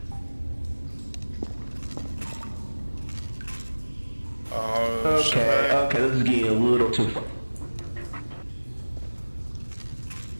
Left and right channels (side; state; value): both; inverted; correlation -1.00